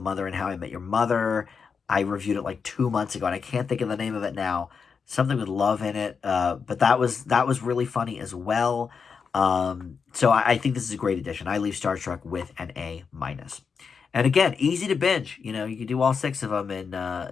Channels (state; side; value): quieter; right; 5.8 dB